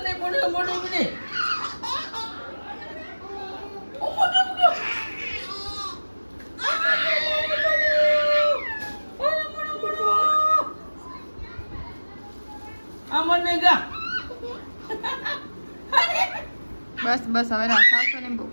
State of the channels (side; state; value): both; inverted; correlation -1.00